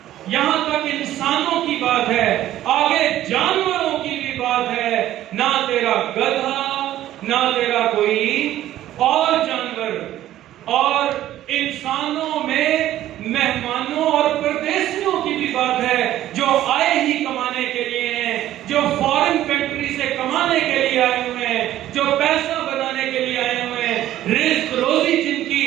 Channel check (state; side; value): quieter; left; 13.3 dB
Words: یہاں تک انسانوں کی بات ہے, آگے جانوروں کی بھی بات ہے. نہ تیرا گدھا, نہ تیرا کوئی اور جانور, اور انسانوں میں مہمانوں اور پردیسیوں کی بھی بات ہے جو آئے ہی کمانے کے لیے ہیں, جو فارن کنٹری سے کمانے کے لیے آئے ہوئے ہیں, جو پیسہ بنانے کے لیے آئے ہوئے ہیں. رزق روزی جن